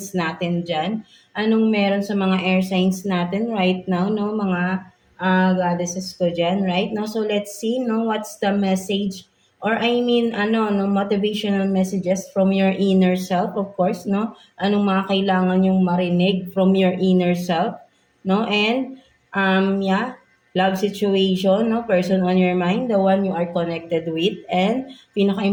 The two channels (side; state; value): both; identical; correlation 1.00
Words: natin dyan? Anong meron sa mga air signs natin right now, no? Mga goddesses ko dyan, right? No? So, let's see, no? What's the message or I mean, no, motivational messages from your inner self, of course, no? Anong mga kailangan yung marinig from your inner self, no? And, yeah, love situation, no? Person on your mind, the one you are connected with, and